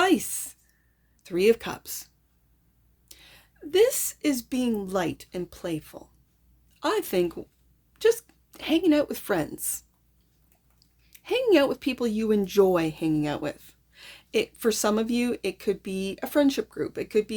Three of Cups. This is being light and playful. I think just hanging out with friends. Hanging out with people you enjoy hanging out with. For some of you, it could be a friendship group. It could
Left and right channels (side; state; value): both; identical; correlation 1.00